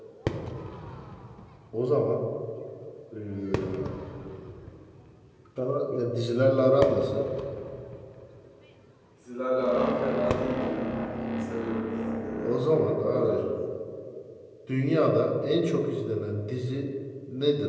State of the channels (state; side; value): identical; both; correlation 1.00